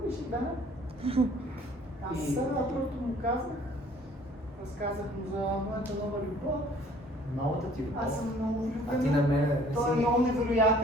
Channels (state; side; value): normal; both; correlation 0.55